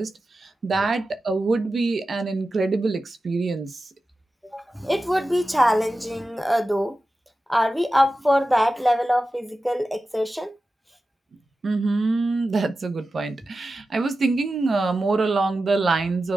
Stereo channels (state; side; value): normal; both; correlation 0.93